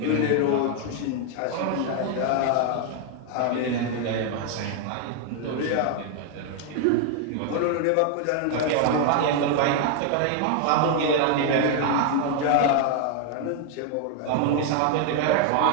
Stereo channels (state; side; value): different; both; correlation 0.00